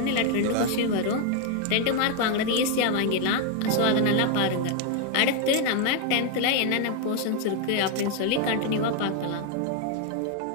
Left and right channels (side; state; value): both; different; correlation 0.01